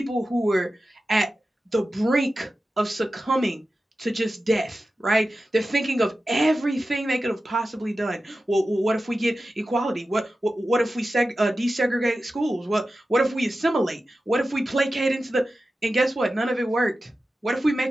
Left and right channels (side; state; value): both; normal; correlation 0.93